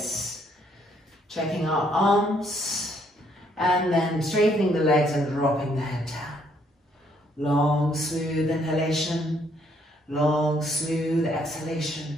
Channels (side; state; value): both; normal; correlation 0.69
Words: checking our arms, and then straightening the legs and dropping the head down. Long, smooth inhalation, long, smooth